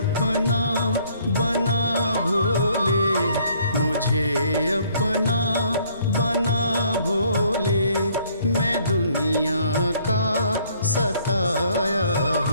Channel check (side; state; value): both; inverted; correlation -0.62